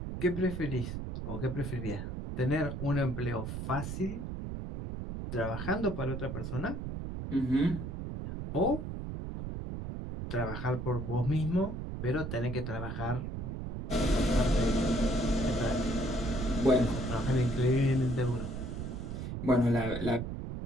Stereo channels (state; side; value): noise; right; rumble, 5 dB below the sound